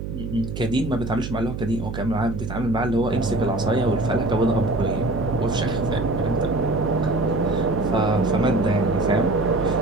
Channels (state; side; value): noise; right; hum, 6 dB below the sound